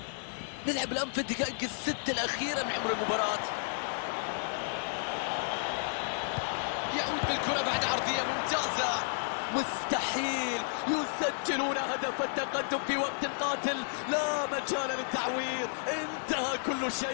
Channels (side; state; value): right; silent; 56 dB below the other